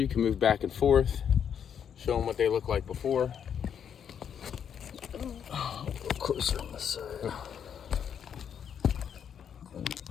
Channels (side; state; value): right; quieter; 8.2 dB